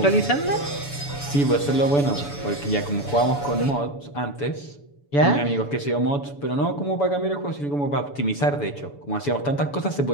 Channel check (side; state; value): right; late; 7.0 ms